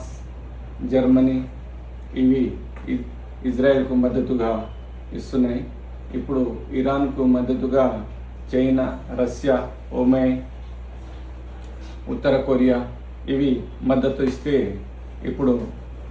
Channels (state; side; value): identical; both; correlation 1.00